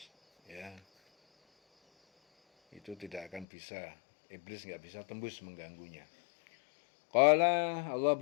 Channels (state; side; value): drops out; right; at 3.5 s